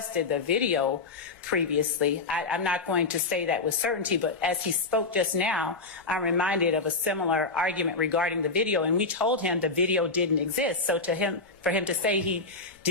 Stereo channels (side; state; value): right; quieter; 3.8 dB